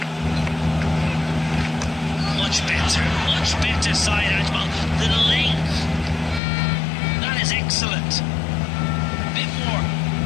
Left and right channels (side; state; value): right; drops out; at 6.4 s